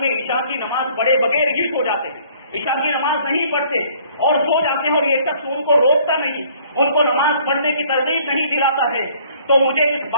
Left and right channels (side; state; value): both; inverted; correlation -0.58